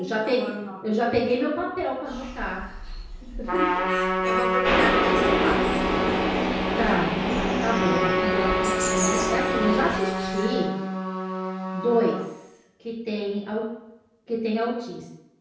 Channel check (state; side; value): identical; both; correlation 1.00